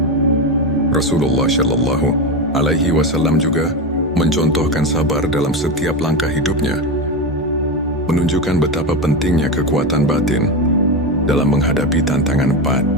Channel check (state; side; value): normal; both; correlation 0.16